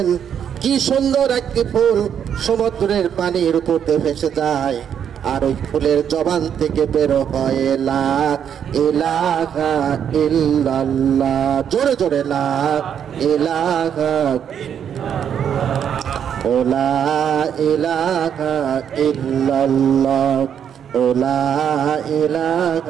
কি সুন্দর একটি ফুল সমুদ্রের পানির উপর দিয়ে ভেসে যায়, আর ওই ফুলের জবান থেকে বের হয় লা ইলাহা ইল্লাল্লাহ, জোরে জোরে লা ইলাহা লা ইলাহা ইল্লাল্লাহ লা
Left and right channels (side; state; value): left; quieter; 8.6 dB